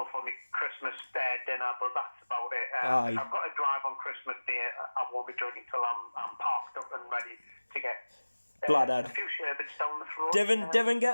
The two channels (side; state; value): both; inverted; correlation -1.00